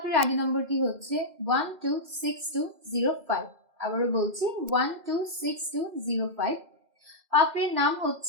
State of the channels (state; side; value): late; left; 2.0 ms